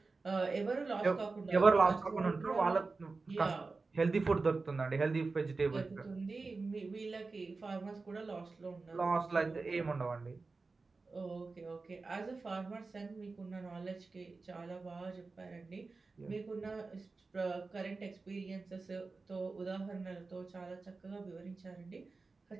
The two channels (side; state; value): left; quieter; 3.9 dB